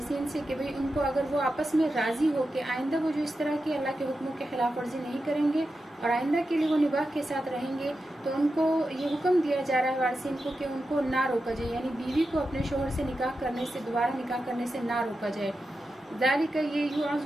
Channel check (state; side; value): normal; both; correlation 0.90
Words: से कि भाई उनको अगर वो आपस में राज़ी हो कि आइंदा वो जो इस तरह की अल्लाह के हुक्मों के खिलाफ वर्जी नहीं करेंगे और आइंदा के लिए वो निबाह के साथ रहेंगे, तो उनको ये हुक्म दिया जा रहा है वारिसीन को कि उनको ना रोका जाए, यानी बीवी को अपने शोहर से निकाह करने से, दोबारा निकाह करने से ना रोका जाए। ज़ालिका, ये